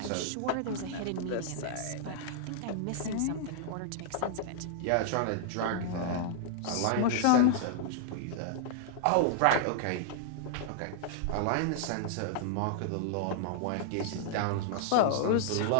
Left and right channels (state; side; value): different; both; correlation -0.01